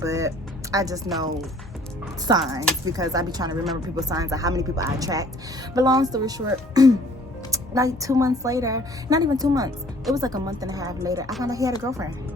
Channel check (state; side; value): normal; both; correlation 0.55